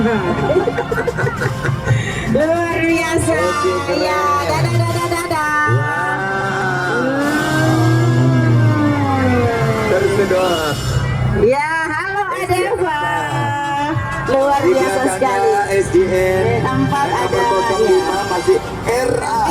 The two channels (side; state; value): both; identical; correlation 1.00